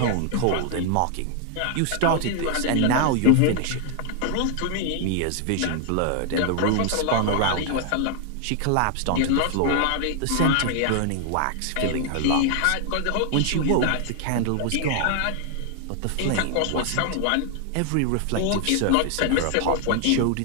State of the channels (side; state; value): both; different; correlation 0.00